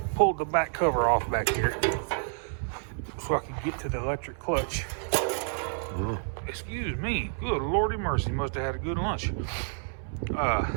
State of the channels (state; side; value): silent; left; 58 dB below the other